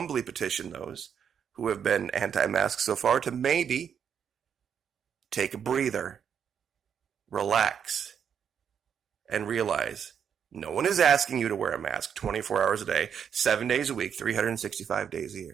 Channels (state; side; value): quieter; left; 7.8 dB